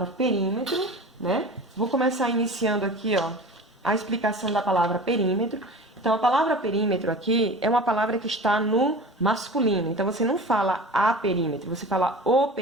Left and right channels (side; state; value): both; normal; correlation 0.36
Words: perímetro, né? Vou começar iniciando aqui, ó, a explicação da palavra perímetro. Então, a palavra perímetro aqui é uma palavra que está no masculino. Então, você não fala a perímetro, você fala o